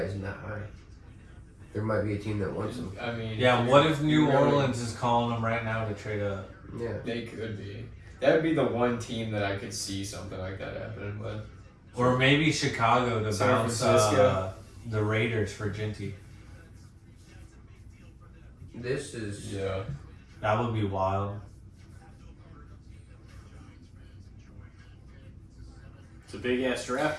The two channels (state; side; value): identical; both; correlation 1.00